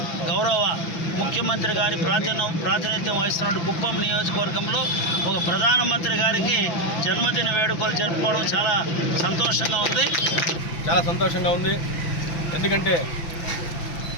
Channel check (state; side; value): late; right; 6.0 ms